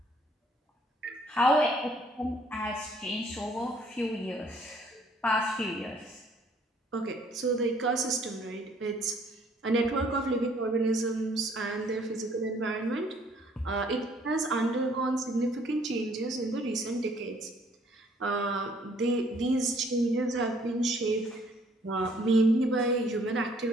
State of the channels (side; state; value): both; normal; correlation 0.61